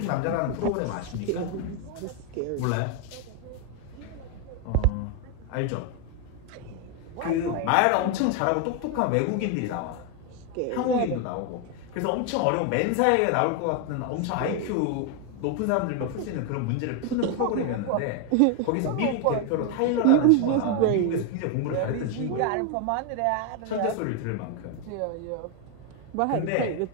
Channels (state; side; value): different; both; correlation 0.01